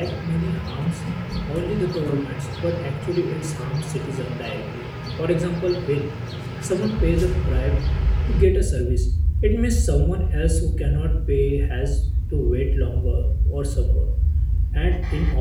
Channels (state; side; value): identical; both; correlation 1.00